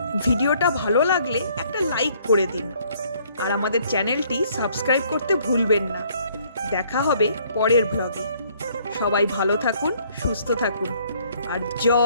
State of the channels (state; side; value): inverted; both; correlation -0.63